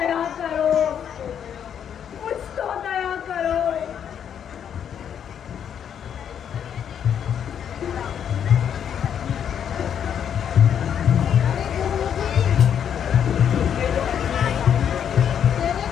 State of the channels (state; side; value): quieter; right; 8.6 dB